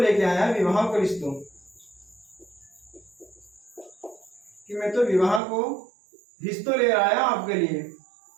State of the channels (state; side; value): drops out; left; at 5.4 s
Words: आया, विवाह को रिश्तो, कि मैं तो विवाह को रिश्तो ले आया आपके लिए।